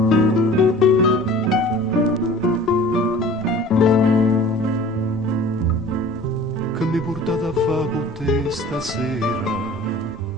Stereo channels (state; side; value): normal; both; correlation 0.44